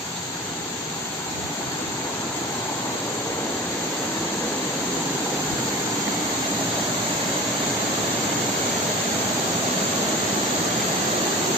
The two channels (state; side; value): normal; both; correlation 0.37